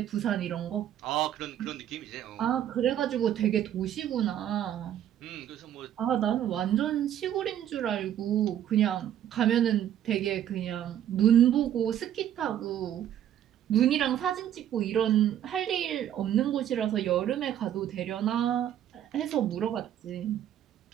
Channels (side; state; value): left; quieter; 10.8 dB